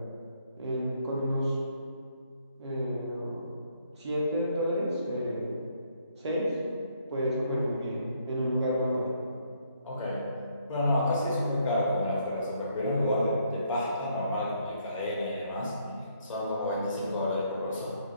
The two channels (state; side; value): inverted; both; correlation -0.70